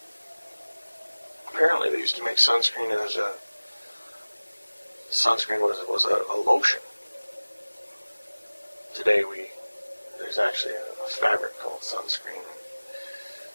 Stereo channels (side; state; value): both; inverted; correlation -1.00